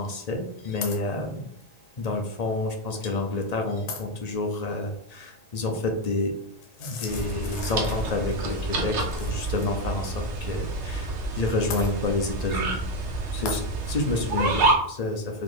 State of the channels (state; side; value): late; right; 1.8 ms